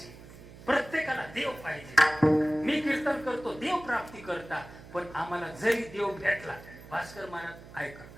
प्रत्येकाला देव पाहिजे. मी कीर्तन करतो देव प्राप्ती करता, पण आम्हाला जरी देव भेटला, भास्कर महाराज ऐका,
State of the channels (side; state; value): right; noise; hum, 18 dB below the sound